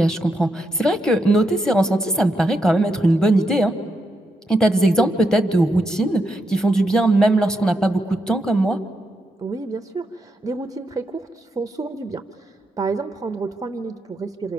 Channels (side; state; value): both; normal; correlation 0.82